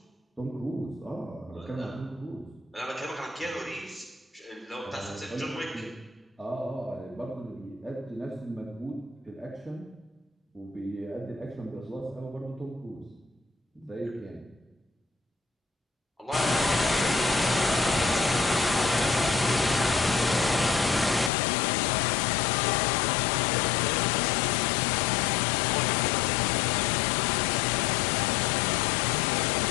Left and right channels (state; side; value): drops out; right; at 21.3 s